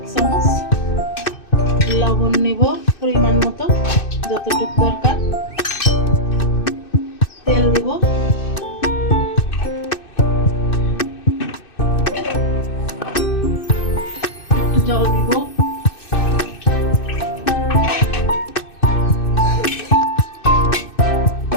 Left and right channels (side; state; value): right; late; 2.6 ms